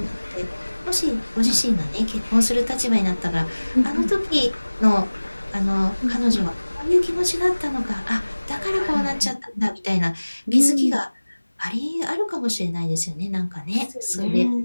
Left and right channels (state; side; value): inverted; both; correlation -1.00